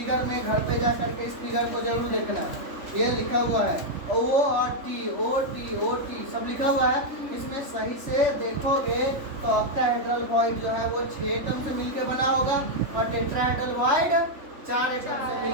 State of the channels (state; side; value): late; left; 3.4 ms